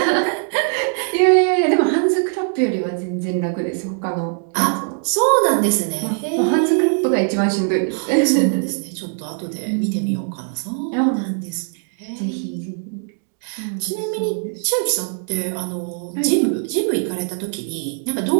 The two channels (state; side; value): silent; left; 58 dB below the other